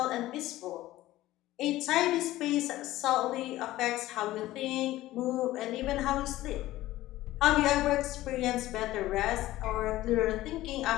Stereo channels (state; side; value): quieter; right; 16.0 dB